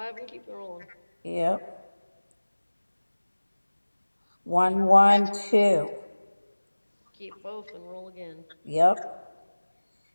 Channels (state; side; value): inverted; both; correlation -1.00